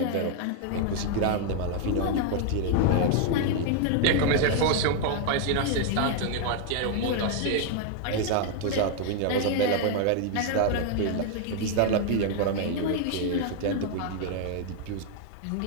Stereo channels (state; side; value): different; both; correlation 0.00